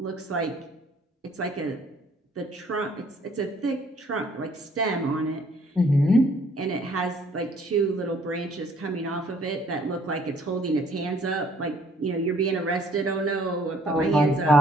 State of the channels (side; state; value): both; normal; correlation 0.61